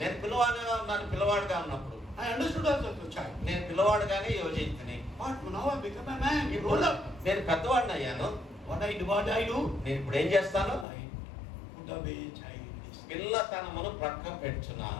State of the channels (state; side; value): drops out; right; at 10.9 s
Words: నేను పిల్లవాడిగా ఉన్నాను, పిల్లవాడిగా ఉన్నప్పుడు I understood as a child. నేను పిల్లవాడుగానే యోచించుని, But now I become a man, you grown up. నేను పెద్దవాడిని అయ్యాను. What I do? నేను ఇప్పుడు ఏం చేస్తాను, I put away childish. పిల్లతనమును ప్రక్క